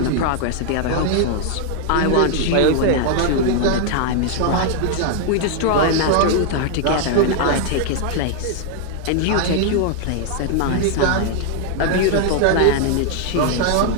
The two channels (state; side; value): different; both; correlation 0.00